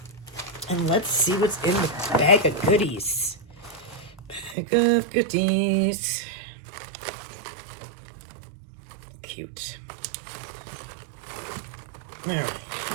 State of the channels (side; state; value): left; drops out; at 4.5 s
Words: And let's see what's in the bag of goodies. Bag of goodies. Cute. All right.